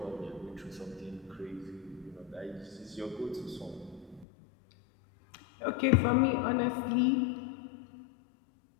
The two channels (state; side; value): drops out; right; at 4.2 s